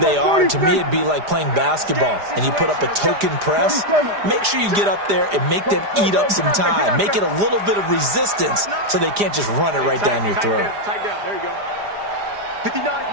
are. To me, it'd be like playing basketball, and you put up a token press. Make sure you get up there and make them eat up some time. Make it a little bit of resistance so they can't just run it right down your throat. Tight down, there you go. 59's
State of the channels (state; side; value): late; left; 4.9 ms